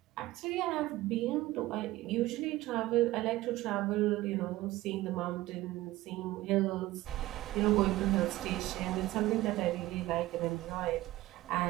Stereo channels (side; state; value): left; quieter; 17.2 dB